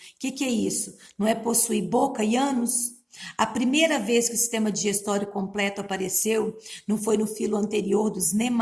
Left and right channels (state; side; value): identical; both; correlation 1.00